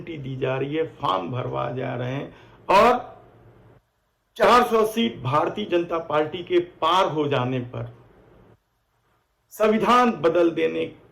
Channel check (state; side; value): identical; both; correlation 1.00